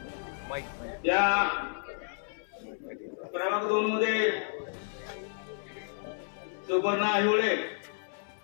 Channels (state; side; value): silent; right; 57 dB below the other